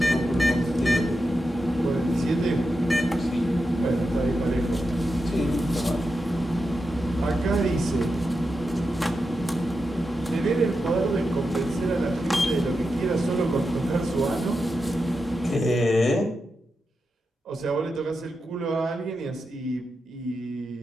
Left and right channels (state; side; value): normal; both; correlation 0.88